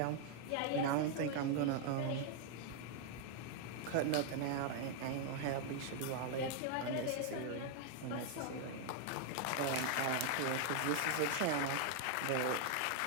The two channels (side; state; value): both; different; correlation 0.00